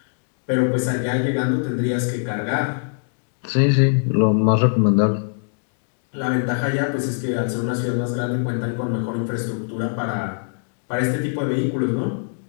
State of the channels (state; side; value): silent; right; 59 dB below the other